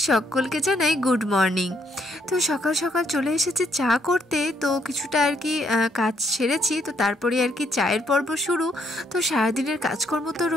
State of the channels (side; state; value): both; normal; correlation 0.71